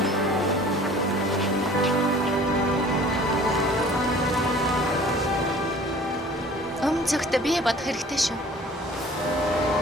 Цагт бие бодох хэрэгтэй шүү.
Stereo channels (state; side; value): normal; both; correlation 0.48